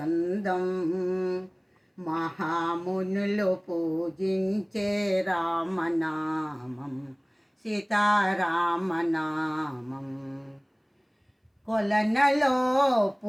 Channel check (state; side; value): identical; both; correlation 1.00